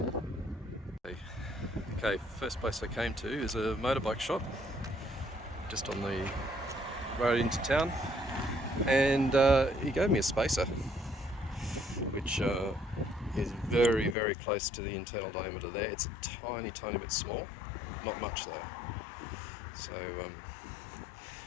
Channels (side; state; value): right; drops out; at 14.2 s